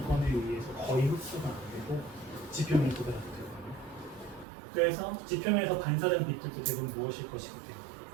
의해서 거의 흡수가 안 되고 지표면에 도달 안 되거든요. 그래서 지표면에서 반사된 빛들도 대부분 무엇일 것이기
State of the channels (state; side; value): drops out; left; at 4.5 s